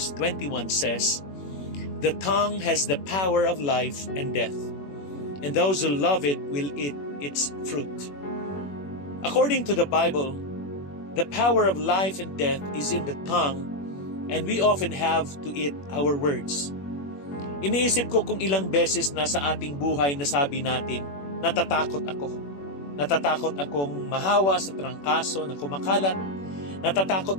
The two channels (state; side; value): late; right; 21 ms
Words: 21 says, "The tongue has the power of life and death, and those who love it will eat its fruit." According to the Bible, the power of life and death is in the tongue, and we often have to eat our words. Iniisip ko kung ilang beses na sa ating buhay nasabi natin, natatakot ako. Natatakot akong mahawa sa trangkaso na kumakalat. Natatakot